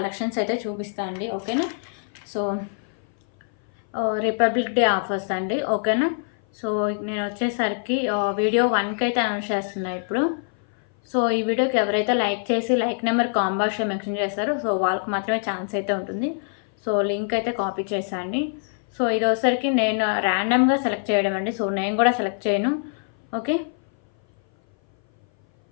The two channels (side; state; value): right; silent; 57 dB below the other